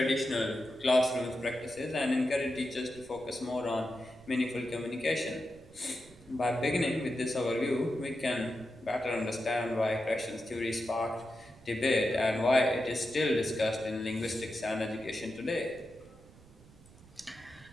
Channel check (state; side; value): noise; right; rumble, 24 dB below the sound